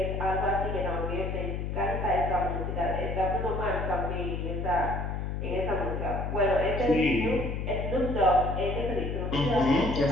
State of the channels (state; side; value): noise; left; hum, 3 dB below the sound